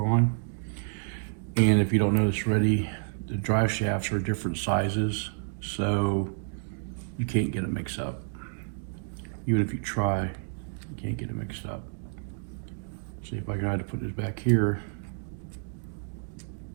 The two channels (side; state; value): left; silent; digital silence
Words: And if you don't notice already, the drive shafts are different sizes, so you can't get it mixed up. Even if you try, you can't get it mixed up. See, if I try to put this back here,